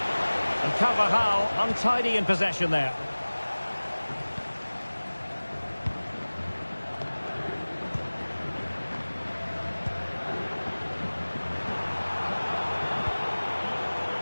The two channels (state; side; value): inverted; both; correlation -1.00